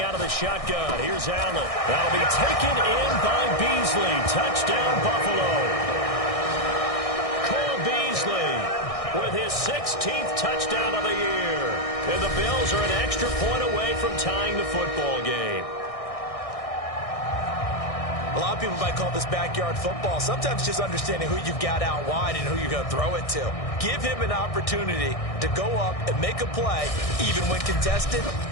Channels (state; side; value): late; right; 1.6 ms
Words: out of the shotgun. Here's Allen. That'll be taken in by Beasley. Touchdown, Buffalo. Cole Beasley with his 16th touchdown of the year. And the Bills are an extra point away from tying the football game. A lot of people might call this backyard football. Sometimes just understanding who you've got out wide and who you're going to throw it to. Give him an opportunity to go up and make a play, even when contested.